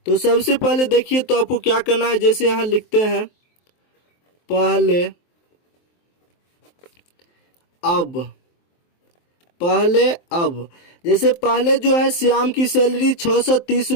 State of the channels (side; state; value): right; late; 23 ms